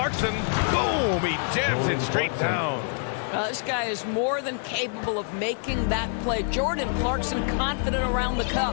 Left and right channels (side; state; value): right; silent; 61 dB below the other